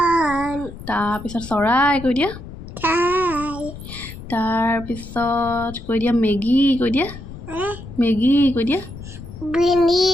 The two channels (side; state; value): left; noise; rumble, 13 dB below the sound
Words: তাৰপিছত চৰাই কৈ দিয়া তাৰপিছত কৈ দিয়া মেগী কৈ দিয়া মেগী কৈ দিয়া